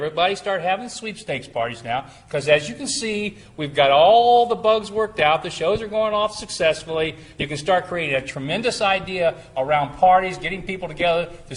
start having sweepstakes parties now, because as you can see, we've got all the bugs worked out. The shows are going off successfully. You can start creating a tremendous idea around parties, getting people together to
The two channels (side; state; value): both; identical; correlation 1.00